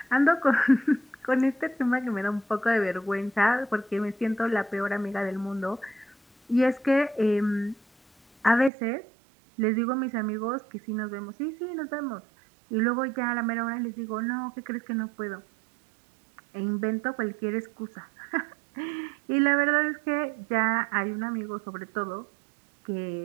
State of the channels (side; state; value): left; drops out; at 8.7 s